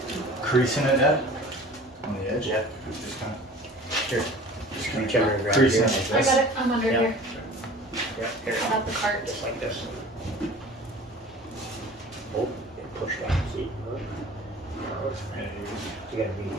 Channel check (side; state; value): both; normal; correlation 0.44